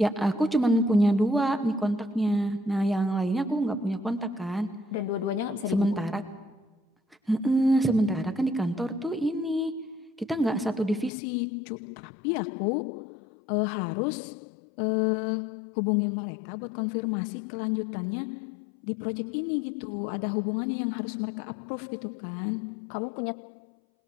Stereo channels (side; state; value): right; drops out; at 11.1 s